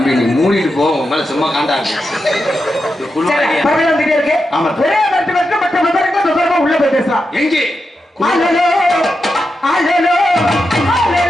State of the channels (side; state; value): both; normal; correlation 0.88